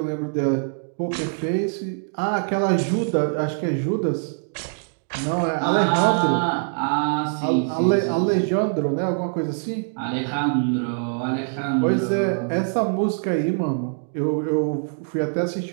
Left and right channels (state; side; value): silent; left; digital silence